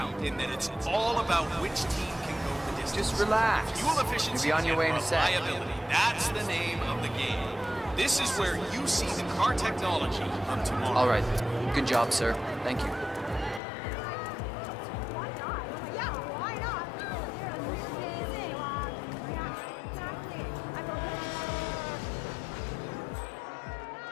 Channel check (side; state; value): right; drops out; at 13.6 s